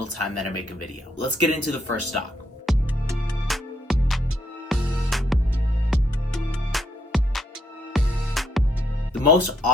time that I make a video. Let's get into the first stock. The most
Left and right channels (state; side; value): normal; both; correlation 0.74